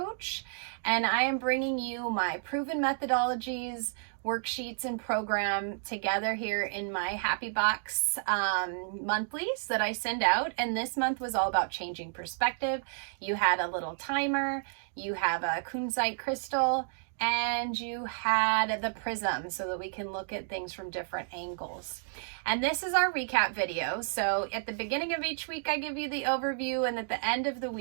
and I am bringing you my proven methodologies, worksheets, and program together here in my Happy Box monthlies that I send out. And this month was all about changing perspective. You had a little timer, you have a kunzite crystal, and you had the prism so that we can look at things from different angles. And this is our recap video. So at the beginning of each week, I give you the overview, and at the end of the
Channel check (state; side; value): silent; left; digital silence